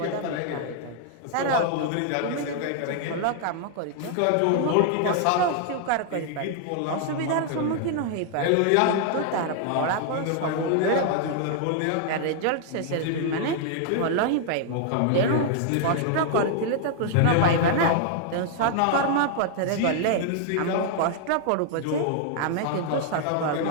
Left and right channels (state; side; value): different; both; correlation 0.00